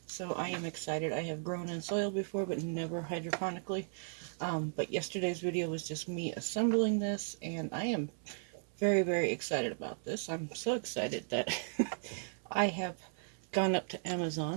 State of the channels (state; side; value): silent; left; 54 dB below the other